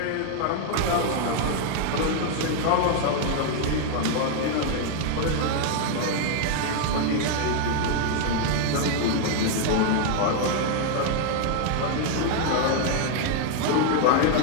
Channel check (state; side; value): different; both; correlation 0.00